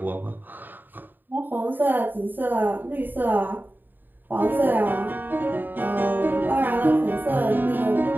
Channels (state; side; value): late; left; 0.091 ms